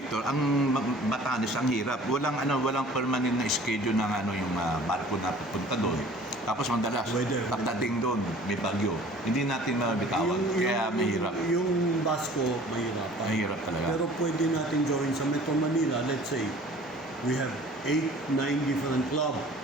ang Batanes ang hirap. Walang permanent na schedule ng yung barko na pupunta doon. Tapos madalas pagdating doon may bagyo. Hindi natin mabitawan. Kaya mahirap. Yung Basco, mahirap. Mahirap talaga. Pero pwede natin gawin sa Metro Manila, let's say, we have 8-9 different club.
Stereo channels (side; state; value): both; normal; correlation 0.48